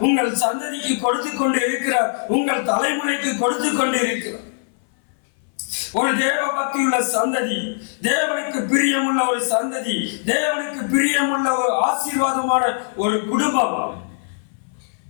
உங்கள் சந்ததிக்கு கொடுத்து கொண்டு இருக்கிறார், உங்கள் தலைமுறைக்கு கொடுத்து கொண்டு இருக்கிறார். ஒரு தேவ பக்தியுள்ள சந்ததி, தேவனுக்கு பிரியமுள்ள ஒரு சந்ததி, தேவனுக்கு பிரியமுள்ள ஒரு ஆசீர்வாதமான ஒரு குடும்பம்,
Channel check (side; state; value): right; silent; 59 dB below the other